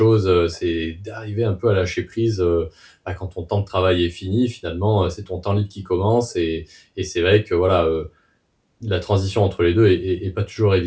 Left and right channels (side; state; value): both; identical; correlation 1.00